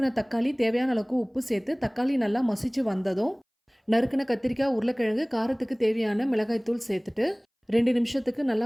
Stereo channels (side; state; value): both; identical; correlation 1.00